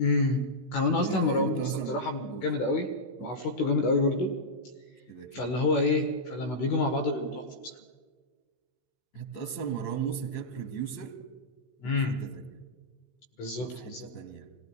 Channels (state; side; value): late; right; 16 ms